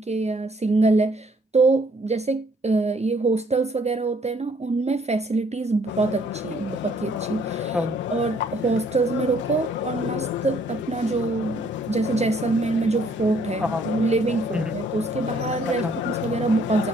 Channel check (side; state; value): both; normal; correlation 0.64